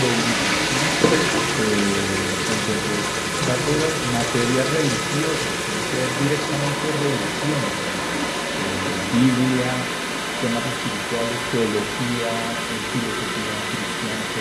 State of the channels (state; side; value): identical; both; correlation 1.00